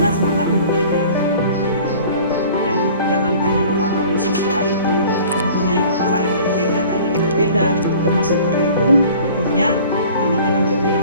semangat yang berbeda. Dan jangan hanya memahami siswa itu mempunyai kepala yang berbeda, tadi berbeda, termasuk guru pun punya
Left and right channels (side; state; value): both; inverted; correlation -0.47